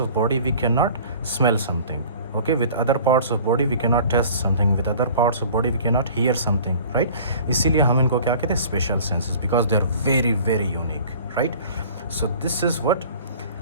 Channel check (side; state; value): both; inverted; correlation -0.46